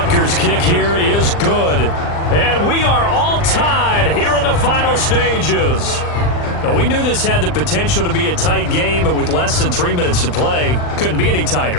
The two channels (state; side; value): late; right; 39 ms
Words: kick here is good. And we are all tied here in the final stages. Now, we knew this had the potential to be a tight game, but with less than 3 minutes to play, couldn't be any